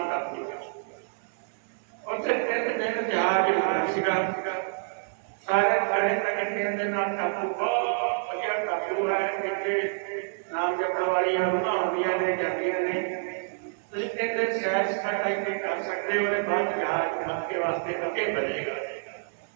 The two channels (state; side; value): silent; left; digital silence